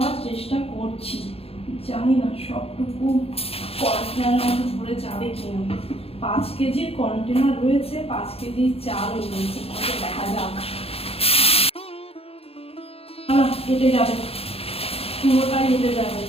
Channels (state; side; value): late; right; 0.28 ms